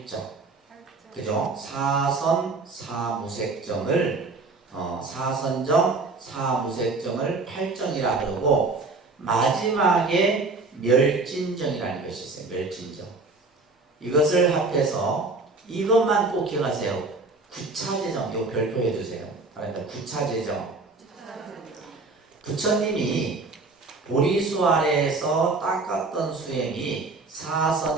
그죠? 사선, 사무색정을 사선정, 사무색정을 팔정이라 그러고, 마지막에 멸진정이라는 것이 있어요. 멸진정. 이것을 합해서 이것만 꼭 기억하세요. 구차제정. 이거 별표해 두세요. 그러니까 구차제정. 부처님이 보리수 아래에서 닦았던 수행이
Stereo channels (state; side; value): quieter; left; 3.7 dB